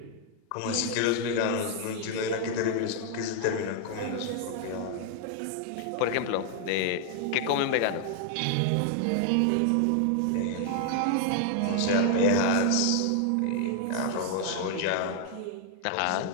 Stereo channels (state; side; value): different; both; correlation 0.00